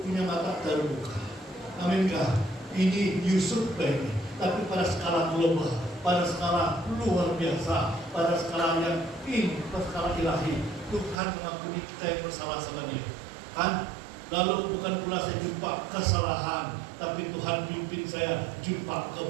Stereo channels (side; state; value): left; drops out; at 11.2 s